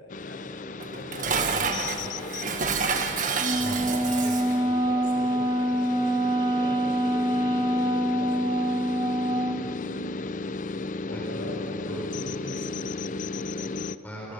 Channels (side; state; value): both; normal; correlation 0.61